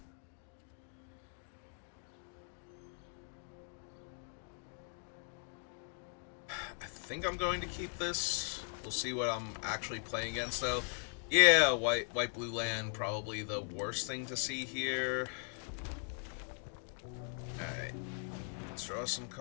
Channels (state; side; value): silent; right; 52 dB below the other